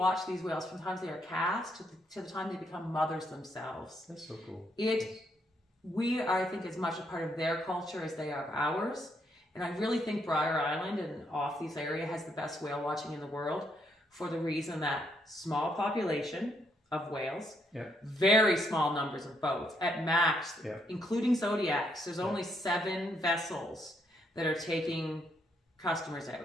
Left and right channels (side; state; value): both; normal; correlation 0.74